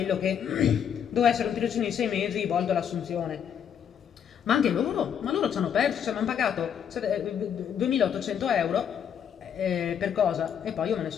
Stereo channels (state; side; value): quieter; right; 8.4 dB